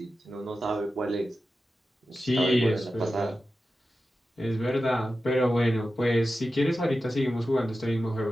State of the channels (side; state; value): both; normal; correlation 0.92